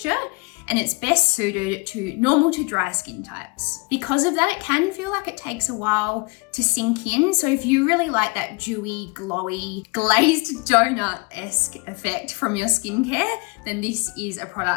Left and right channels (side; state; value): right; quieter; 29.0 dB